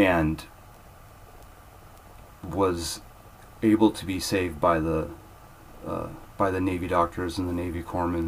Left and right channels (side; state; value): both; identical; correlation 1.00